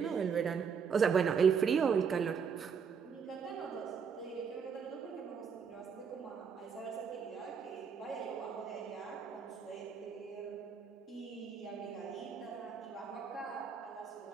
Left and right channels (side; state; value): left; quieter; 6.4 dB